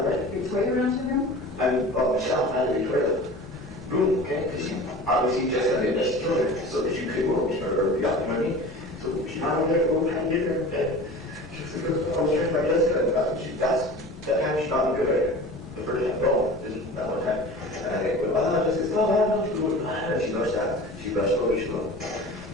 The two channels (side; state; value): both; normal; correlation 0.38